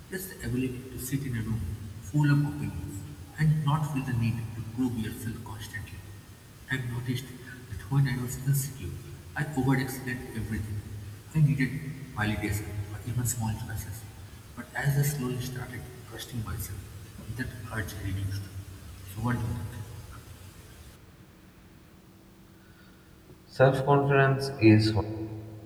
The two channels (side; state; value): both; identical; correlation 1.00